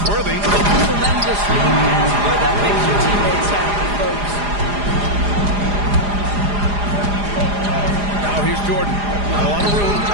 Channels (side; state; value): left; late; 4.9 ms